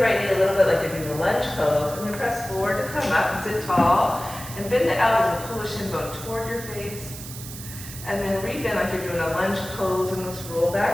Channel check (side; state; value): right; noise; hiss, 12 dB below the sound